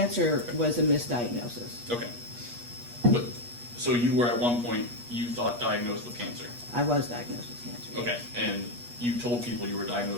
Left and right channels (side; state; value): left; late; 8.4 ms